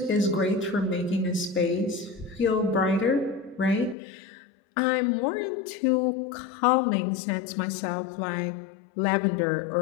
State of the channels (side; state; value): right; drops out; at 4.0 s